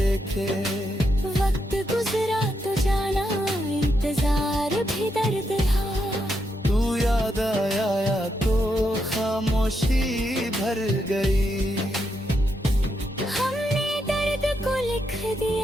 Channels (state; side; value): normal; both; correlation 0.81